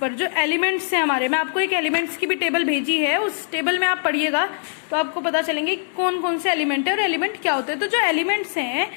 जो एलिमेंट्स हैं हमारे, मैं आपको एक एलिमेंट्स की भी टेबल भेजी है, उस टेबल में आप पढ़िएगा तो आपको पता चलेंगे कौन कौन से एलिमेंट है और एलिमेंट क्या होते हैं। तो जो एलिमेंट्स हैं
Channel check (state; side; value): silent; right; digital silence